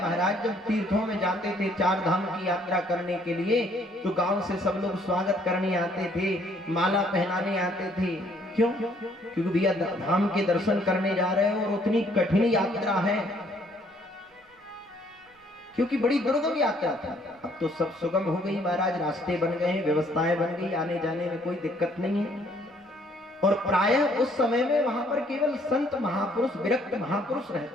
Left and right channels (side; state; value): both; normal; correlation 0.64